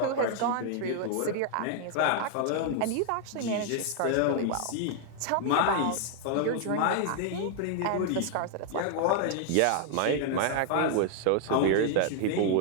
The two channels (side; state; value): both; different; correlation 0.00